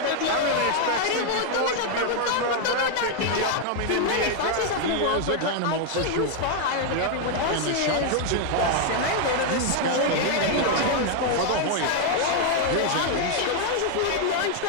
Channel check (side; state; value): both; different; correlation 0.00